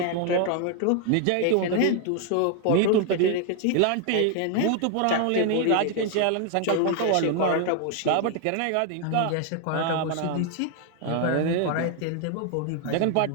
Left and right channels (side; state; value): both; different; correlation 0.00